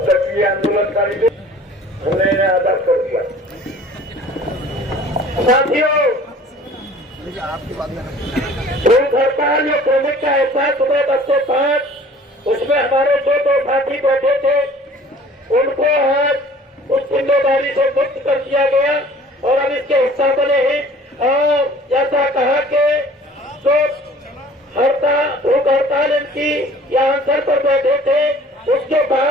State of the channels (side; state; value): both; normal; correlation 0.49